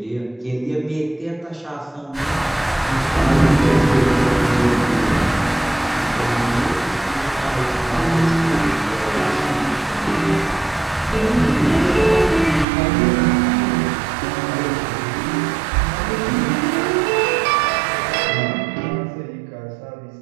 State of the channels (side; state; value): left; drops out; at 12.7 s